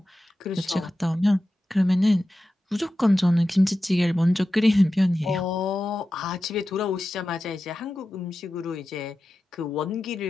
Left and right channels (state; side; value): normal; both; correlation 0.93